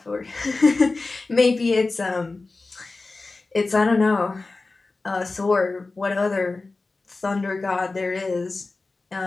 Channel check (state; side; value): quieter; right; 3.5 dB